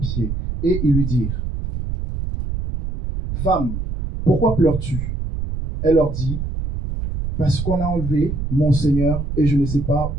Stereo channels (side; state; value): right; noise; rumble, 4 dB below the sound